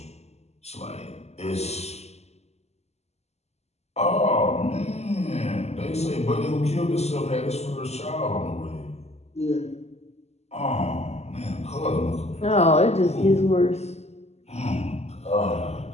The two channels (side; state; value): right; late; 0.31 ms